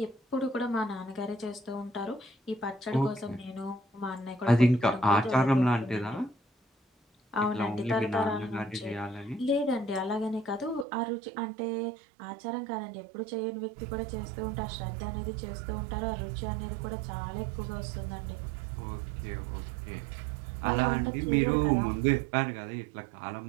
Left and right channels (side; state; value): left; drops out; at 10.9 s